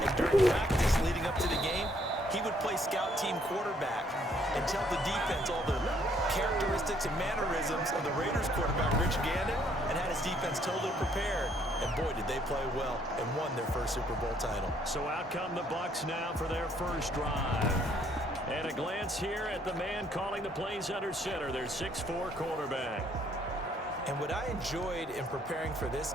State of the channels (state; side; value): normal; both; correlation 0.66